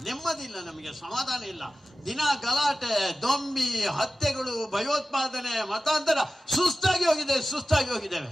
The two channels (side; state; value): both; normal; correlation 0.95